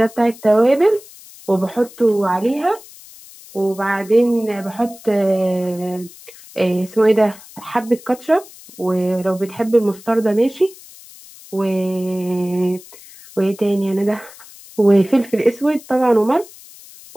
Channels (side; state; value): left; noise; hiss, 20 dB below the sound